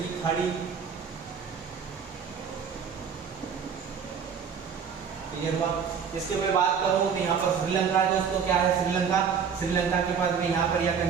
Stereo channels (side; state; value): left; quieter; 6.7 dB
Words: खाड़ी। क्लियर हुआ? इसके मैं बात करूं तो यहाँ पर श्रीलंका है दोस्तों, क्या है श्रीलंका, श्रीलंका के पास में यहाँ पर या